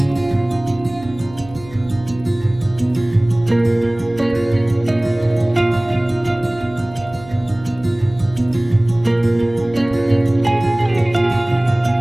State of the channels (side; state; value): right; noise; hum, 19 dB below the sound